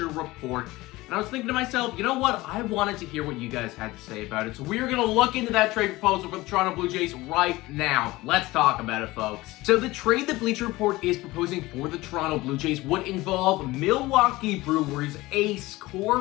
Report. And I was thinking to myself, you know what? I wanted to hear what you guys had to say about it. So we're going to look into that trade proposal for the Toronto Blue Jays right now. Let's talk about it, folks. So the trade that Bleacher Report is proposing for the Toronto Blue Jays would involve Milwaukee Brewers ace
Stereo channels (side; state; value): right; quieter; 19.5 dB